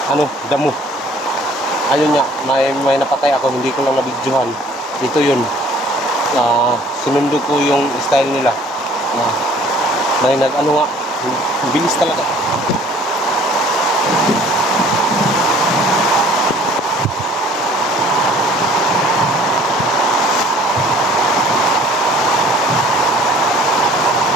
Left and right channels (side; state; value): both; normal; correlation 0.54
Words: damo. Ayun nga, may napatay ako, hindi ko lang nabidyohan. Ito yun, sinundo ko yung style nila. May bilis talaga.